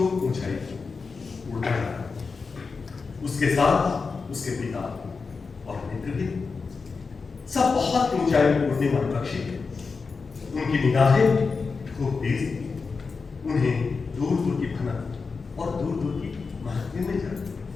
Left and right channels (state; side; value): quieter; right; 4.7 dB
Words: ऊंचाई उड़ता है, उसके साथ उसके पिता और मित्र भी सब बहुत ऊंचाई में उड़ने वाले पक्षी थे। उनकी निगाहें खूब तेज थी, उन्हें दूर दूर की भनक और दूर दूर की महत्व में